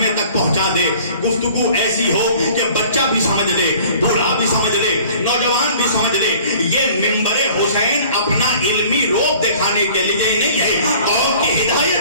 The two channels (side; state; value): both; inverted; correlation -0.50